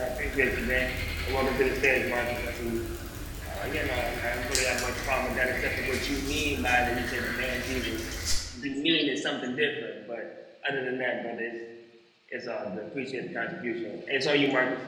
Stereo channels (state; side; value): identical; both; correlation 1.00